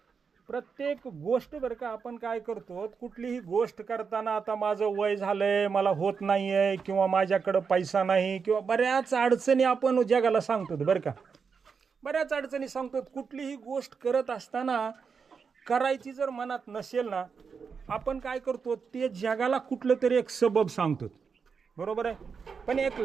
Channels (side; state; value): left; quieter; 5.8 dB